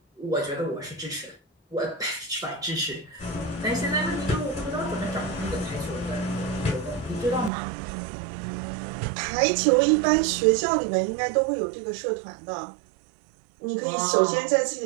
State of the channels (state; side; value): drops out; left; at 7.5 s